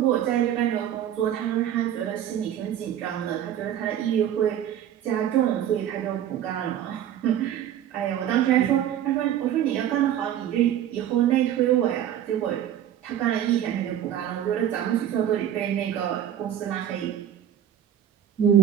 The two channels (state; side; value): quieter; left; 10.7 dB